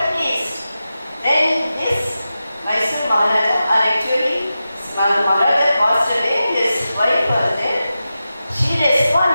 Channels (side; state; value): both; inverted; correlation -0.92